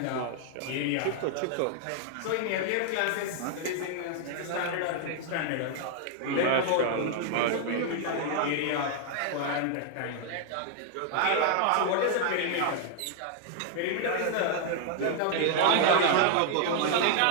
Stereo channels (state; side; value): different; both; correlation 0.00